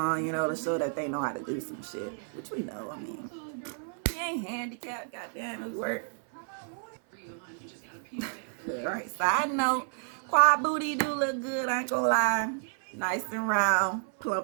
you know, to show that they know how to do some shit. Which we know, I mean. He ain't handicapped, goddamn, it work. Alright, side note, quad booty do look good, I ain't gonna lie. Nice and round,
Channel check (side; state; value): left; silent; 57 dB below the other